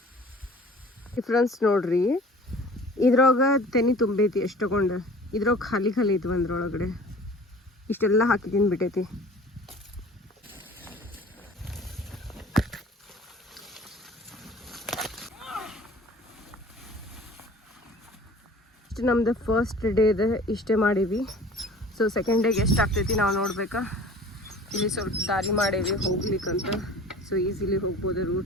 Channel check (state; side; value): normal; both; correlation 0.45